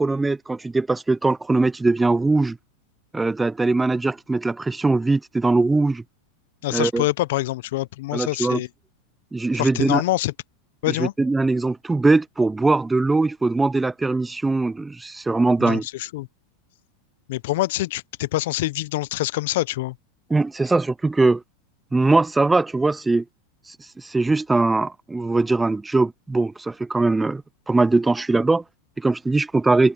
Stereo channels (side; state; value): both; normal; correlation 0.84